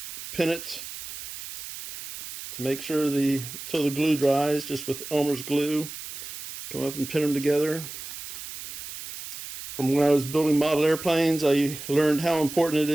pin it to make sure until the glue dries, just with Elmer's glue. Come up and pin them together. From when I was building model airplanes, I learned how important it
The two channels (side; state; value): right; noise; hiss, 11 dB below the sound